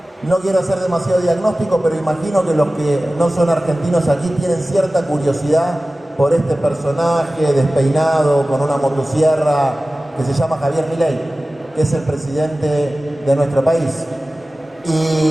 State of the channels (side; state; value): both; normal; correlation 0.96